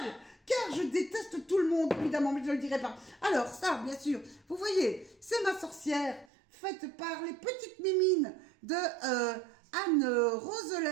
Car je déteste tout le monde, évidemment, mais je ne le dirai pas. Alors, ça, bien sûr, vous voyez, c'est ma sorcière, faite par les petites mimines de Anne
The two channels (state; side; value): drops out; left; at 6.2 s